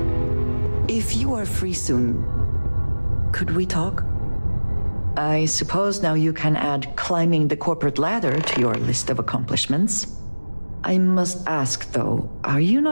If you are free soon, could we talk? I suppose now you can add climbing the corporate ladder to your list of accomplishments. I must ask though, are you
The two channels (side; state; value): both; inverted; correlation -1.00